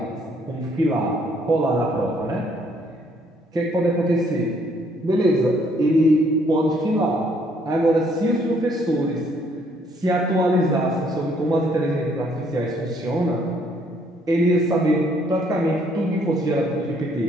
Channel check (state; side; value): normal; both; correlation 0.66